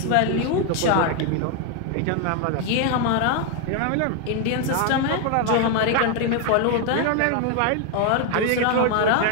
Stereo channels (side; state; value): both; different; correlation 0.01